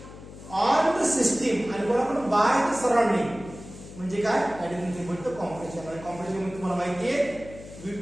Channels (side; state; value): left; noise; hum, 16 dB below the sound